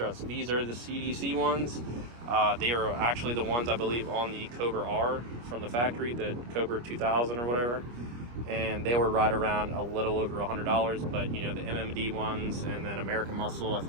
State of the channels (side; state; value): left; late; 25 ms